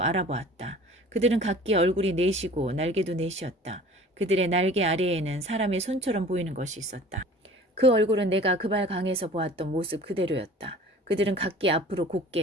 알아보았다. 그들은 각기 얼굴이 넷이고 날개도 넷이었다. 그들의 날개 아래에는 사람의 손처럼 보이는 것이 있었다. 그 얼굴은 내가 그발 강에서 보았던 모습 그대로였다. 그들은 각기 앞으로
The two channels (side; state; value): both; normal; correlation 0.45